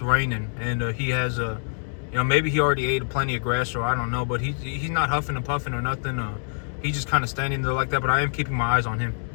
raining, and he has maybe he already ate plenty of grass, or I don't know. But he's not huffing and puffing or nothing. He's just kind of standing there like that. But I am keeping my eyes on him.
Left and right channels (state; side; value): silent; right; digital silence